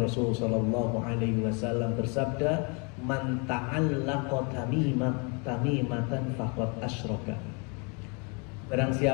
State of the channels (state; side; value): quieter; right; 33.8 dB